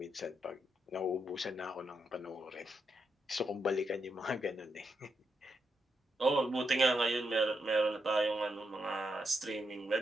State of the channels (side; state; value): both; normal; correlation 0.83